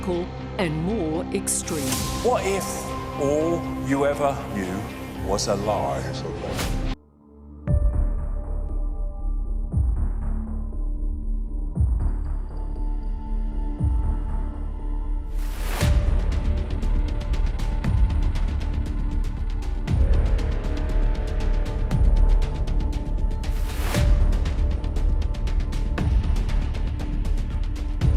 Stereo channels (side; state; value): both; identical; correlation 1.00